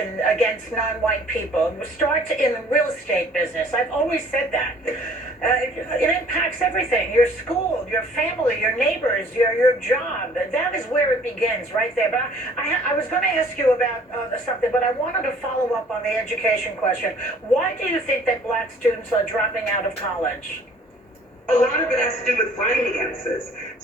against non-white people. It starts in the real estate business. I've always said that. It impacts everything: your school, your family, your neighbors, your job. That is where it begins, right there. But I was going to ask you about something, but I wanted to follow up on the education question. Why do you think that Black students are dropping out of college? A lot of it has to do with finances.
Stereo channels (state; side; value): normal; both; correlation 0.55